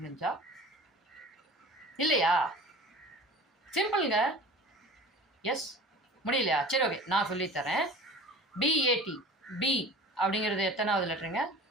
முடிஞ்சா இல்லையா? சிம்பிளுங்க. எஸ் முடியலையா? சரி, ஓகே, நான் சொல்லித்தரேன். BAT பி அப்படிங்கிறது எத்தனாவது லெட்டருங்க?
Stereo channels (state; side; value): normal; both; correlation 0.41